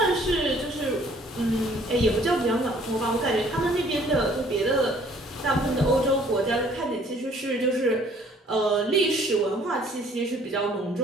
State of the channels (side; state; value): both; normal; correlation 0.58